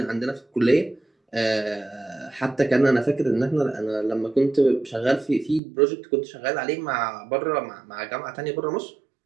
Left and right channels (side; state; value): left; drops out; at 5.6 s